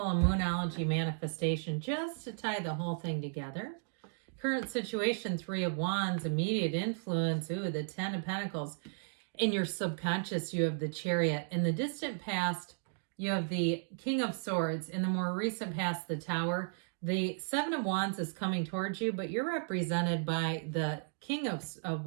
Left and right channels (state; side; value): silent; left; digital silence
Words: a Moonology manifestation just to tie the whole thing together. Current situation, 3 of Wands, immediate influence, the 10 of Pentacles. In your subconscious, you have the Chariot. In the distant past, you have the King of Swords. In the more recent past, the Tower. The 7 of Wands is coming towards you, but you're represented by the King of